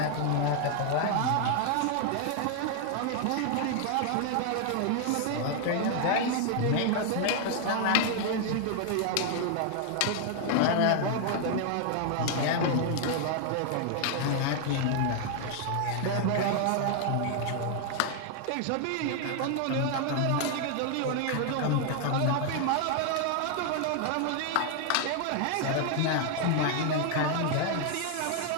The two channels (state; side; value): different; both; correlation 0.00